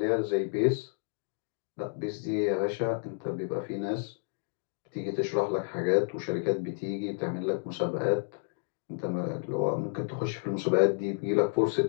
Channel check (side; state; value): right; silent; digital silence